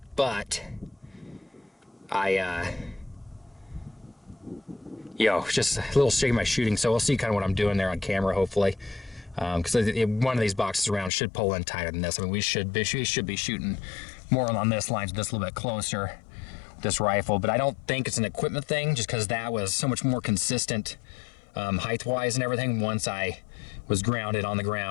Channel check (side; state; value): right; drops out; at 11.1 s